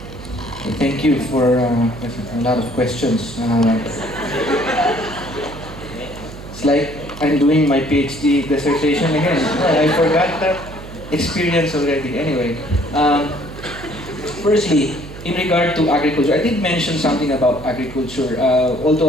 Thank you for a lot of questions. It's like I'm doing my PhD dissertation again. I forgot that experience already. Anyway, firstly, in regard to agriculture, I did mention something about agriculture. Although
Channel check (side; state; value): right; noise; hum, 14 dB below the sound